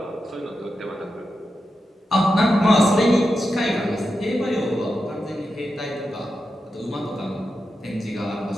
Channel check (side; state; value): both; normal; correlation 0.89